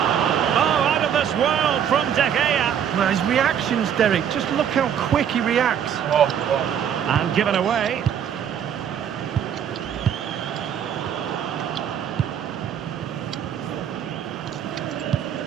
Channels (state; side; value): quieter; left; 8.8 dB